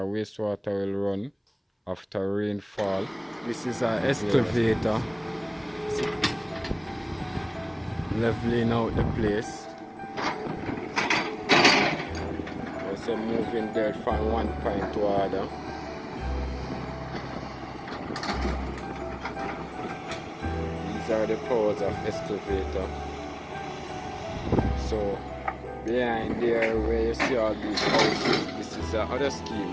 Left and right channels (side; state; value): both; identical; correlation 1.00